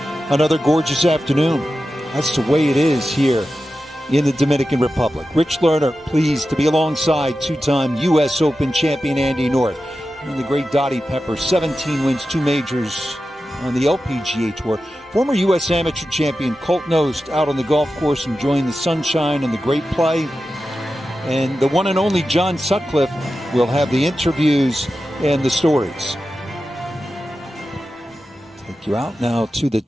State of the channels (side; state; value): both; normal; correlation 0.92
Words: Another gorgeous afternoon. That's the way it is here in the Dominican Republic. Rich Lerner, pleased to be alongside two-time U.S. Open champion Andy North. And the great Dottie Pepper, 17 wins, 2 majors on the LPGA Tour. Former U.S. Amateur champion Colt Knost out on the golf course enjoying the sunshine and the great play. And the one and only John Sutcliffe will have the interviews and the stories. Take you out now to the